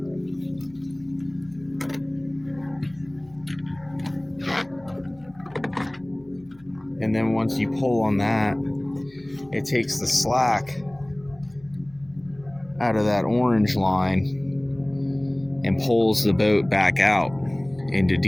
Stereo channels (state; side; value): noise; left; hum, 27 dB below the sound